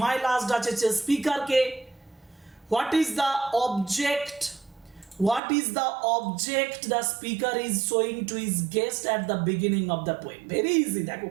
My Last Duchess is speaker ke? What is the object? What is the object the speaker is showing to his guest at the beginning of the poem? Very easy, দেখো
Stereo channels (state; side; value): drops out; left; at 5.4 s